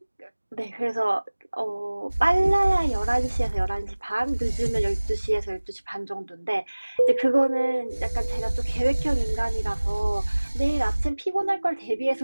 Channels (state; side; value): inverted; both; correlation -1.00